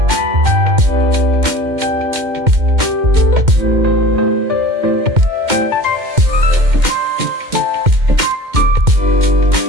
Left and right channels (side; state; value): left; late; 2.1 ms